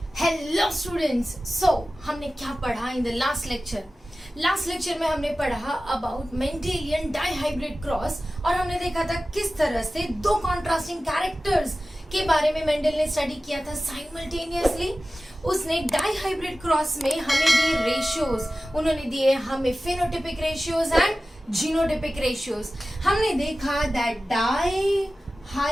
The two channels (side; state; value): both; normal; correlation 0.96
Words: Hello students, हमने क्या पढ़ा इन द लास्ट लेक्चर में हमने पढ़ा अबाउट मेंडेलियन डाइहाइब्रिड क्रॉस और हमने देखा था किस तरह से दो कॉन्ट्रास्टिंग कैरेक्टर्स के बारे में मेंडल ने स्टडी किया था साइमल्टेनियसली। उसने डाइहाइब्रिड क्रॉस में हमें दिए रेशियोज, उन्होंने दिए हमें phenotypic ratios and genotypic ratios. हमने देखा दैट